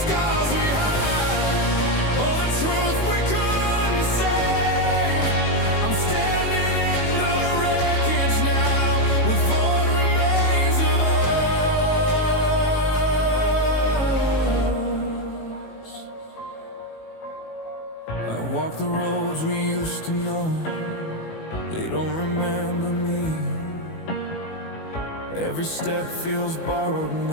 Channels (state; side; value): late; right; 19 ms